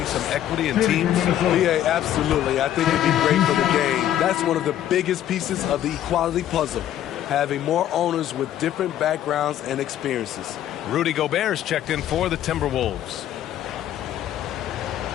some equity in teams? Yeah, absolutely. I think it'd be great for the game. That's one of the biggest pieces of the equality puzzle, having more owners with different backgrounds and experiences. Rudy Gobert's checked in for the Timberwolves.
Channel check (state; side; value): quieter; right; 11.6 dB